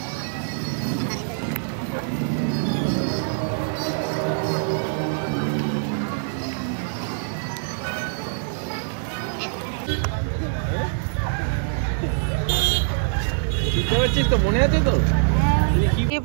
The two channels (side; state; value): left; silent; digital silence